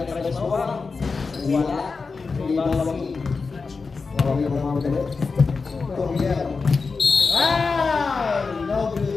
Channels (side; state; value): right; quieter; 4.5 dB